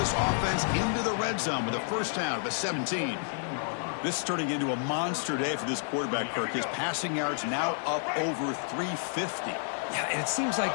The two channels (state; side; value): silent; right; digital silence